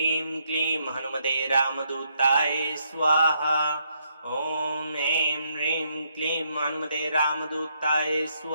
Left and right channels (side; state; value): both; inverted; correlation -0.75